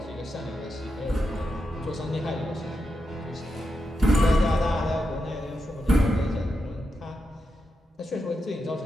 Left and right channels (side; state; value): both; normal; correlation 0.87